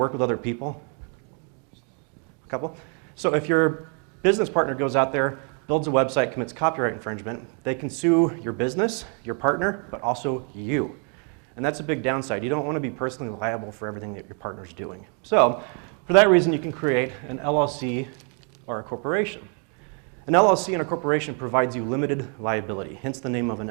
with other people? A couple? So if your business partner goes out there, builds a website, commits copyright infringement, they can sue your business, your partner, but also you. And that's a big downside. You don't want to be personally liable for everything that your partner's doing. So for that reason, you can create an LLC or a corporation. An LLC and a corporation provides you limited liability, hence the name of an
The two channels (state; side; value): quieter; left; 39.6 dB